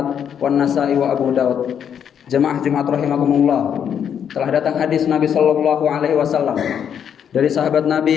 wan Nasa'i wa Abu Dawud. Jemaah Jumat rahimakumullah, telah datang hadis Nabi sallallahu alaihi wasallam dari sahabat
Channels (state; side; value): quieter; right; 8.4 dB